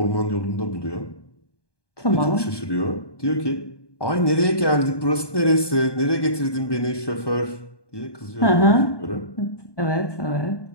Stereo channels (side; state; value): right; late; 1.2 ms